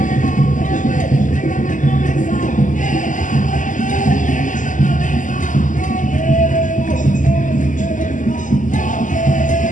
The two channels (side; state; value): right; late; 0.37 ms